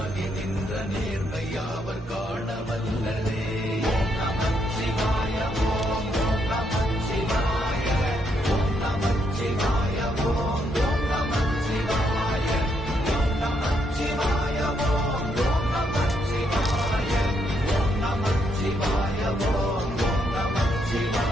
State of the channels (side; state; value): both; normal; correlation 0.76